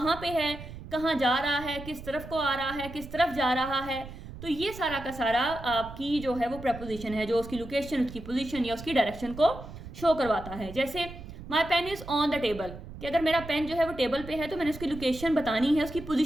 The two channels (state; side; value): noise; right; rumble, 13 dB below the sound